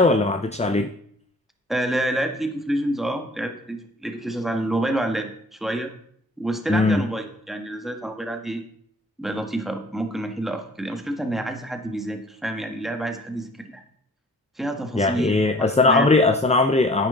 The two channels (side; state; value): both; normal; correlation 0.51